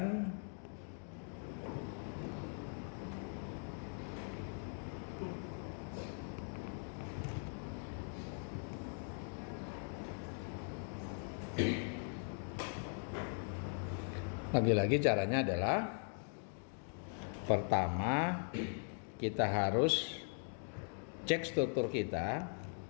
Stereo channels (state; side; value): silent; right; 51 dB below the other